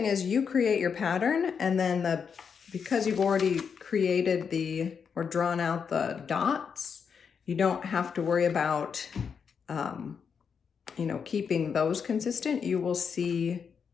is you create your pattern, and then because you've already created or drawn out the dots, you don't have to worry about you know, keeping those consistent, you will see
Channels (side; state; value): right; quieter; 6.5 dB